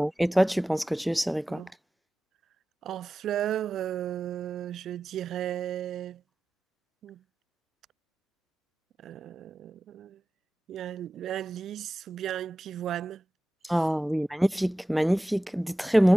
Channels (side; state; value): both; normal; correlation 0.94